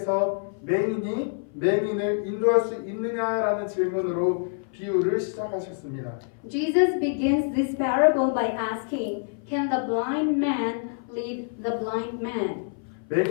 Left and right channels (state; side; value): silent; right; 57 dB below the other